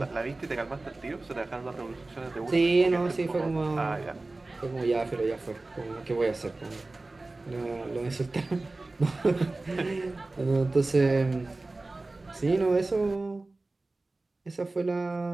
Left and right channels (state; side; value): quieter; left; 3.2 dB